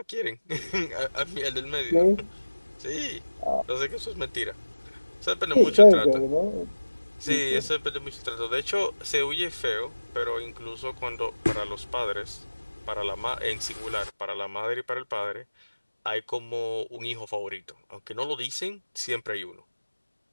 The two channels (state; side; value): inverted; both; correlation -1.00